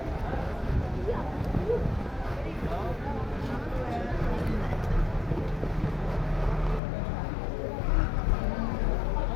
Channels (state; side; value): drops out; right; at 6.8 s